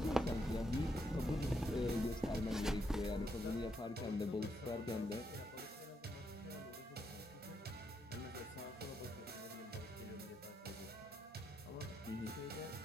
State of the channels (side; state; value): both; normal; correlation 0.79